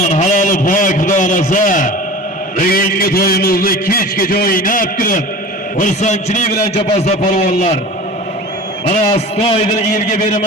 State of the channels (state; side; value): normal; both; correlation 0.37